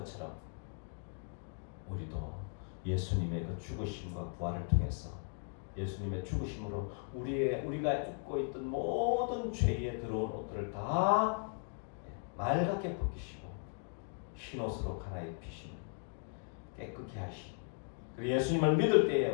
우리도 예수님의 그 죽으심과 부활을 통해서 예수님의 죽으심으로 우리가 입고 있던 모든 죄에 들어온 옷들을 다 맑게 벗기시고 흰옷으로 갈아입히시는 깨끗게 하시고, 그리고 예수님을 믿을 때에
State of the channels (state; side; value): silent; right; 53 dB below the other